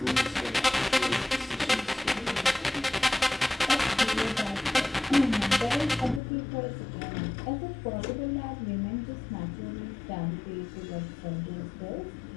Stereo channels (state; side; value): drops out; right; at 6.2 s